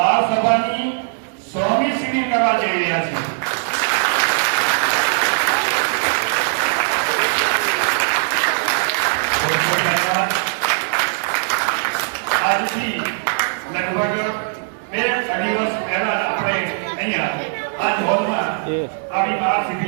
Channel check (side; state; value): left; silent; digital silence